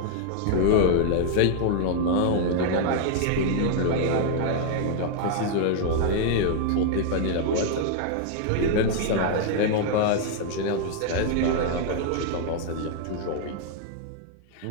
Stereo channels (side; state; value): both; different; correlation -0.01